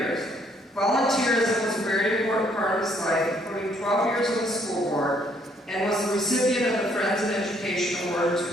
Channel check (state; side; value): normal; both; correlation 0.66